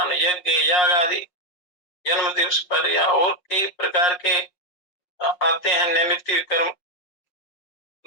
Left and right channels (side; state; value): right; late; 5.5 ms